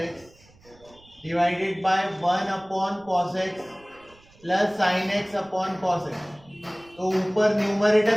x divided by 1 upon cos x plus sin x upon cos x, तो ऊपर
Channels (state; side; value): noise; right; rumble, 28 dB below the sound